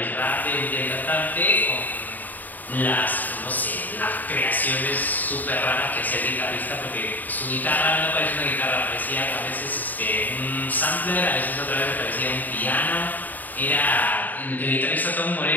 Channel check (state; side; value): late; right; 0.085 ms